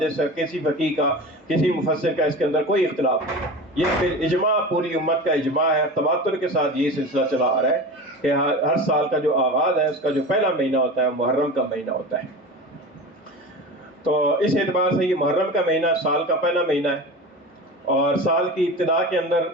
کا، کسی فقیہ کا، کسی مفسر کا اس کے اندر کوئی اختلاف نہیں، یہ پھر اجماع پوری امت کا اجماع ہے، تواتر کے ساتھ یہ سلسلہ چلا آ رہا ہے کہ ہر سال کا جو آغاز ہے اس کا جو پہلا مہینہ ہوتا ہے محرم کا مہینہ ہوتا ہے۔ تو اس اعتبار سے یہ محرم کا مہینہ سال کا پہلا مہینہ ہے، اور سال کی ابتدا کے اندر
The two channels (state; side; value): normal; both; correlation 0.31